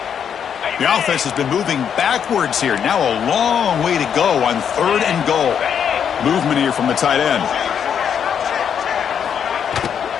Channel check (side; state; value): right; quieter; 8.0 dB